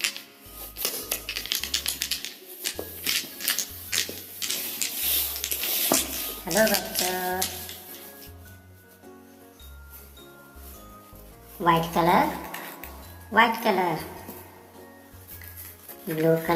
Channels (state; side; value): identical; both; correlation 1.00